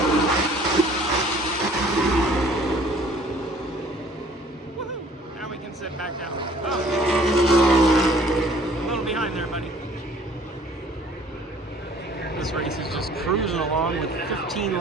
Woohoo! Now we can sit back down. Oh. A little behind there, buddy. This race is just cruising along with 15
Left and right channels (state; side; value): normal; both; correlation 0.55